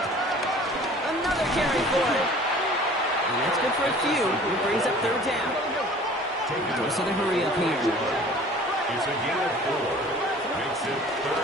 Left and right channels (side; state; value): both; normal; correlation 0.47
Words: Another carry for him. And that's good for a few. It brings up 3rd down. Most of the hurry up here. It's a gain of 4. Makes it